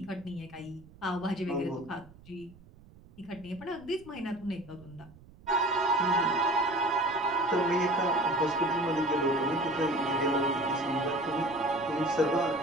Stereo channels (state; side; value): noise; right; rumble, 23 dB below the sound